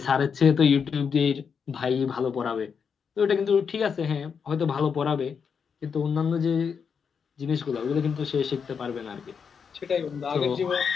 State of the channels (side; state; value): right; quieter; 6.4 dB